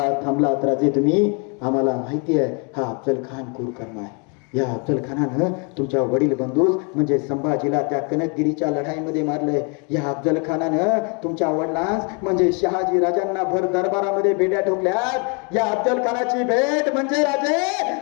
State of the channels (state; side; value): quieter; right; 35.4 dB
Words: थांबलात राजे तुम्ही? आम्हाला माहिती आहे हा अफजल खान क्रूर कर्म आहे. या अफजल खानानं तुमच्या वडील बंधूस म्हणजे संभाजीला त्या कनकगिरीच्या लढाईमध्ये मारलंय. या अफजल खानानं तुमच्या वडिलांस म्हणजे शहाजी राजांना भर दरबारामध्ये बेड्या ठोकल्यात. या अफजल खानाची भेट म्हणजे राजे